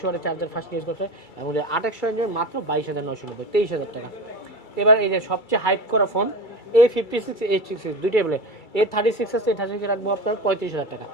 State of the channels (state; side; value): late; right; 2.3 ms